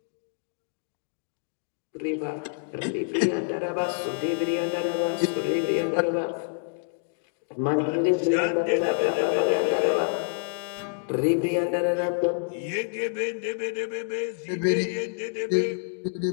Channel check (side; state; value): right; silent; digital silence